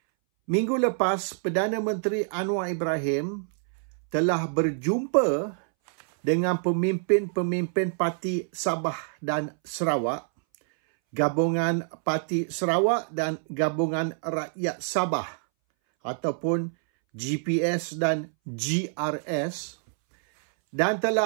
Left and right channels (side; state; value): left; silent; 61 dB below the other